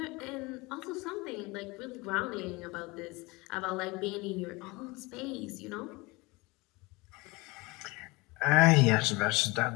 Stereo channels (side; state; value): right; quieter; 24.1 dB